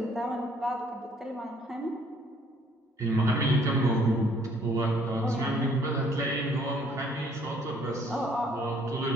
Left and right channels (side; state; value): both; normal; correlation 0.62